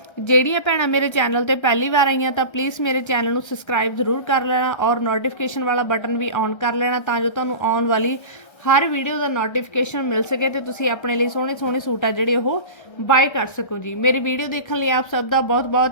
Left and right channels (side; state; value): right; late; 1.3 ms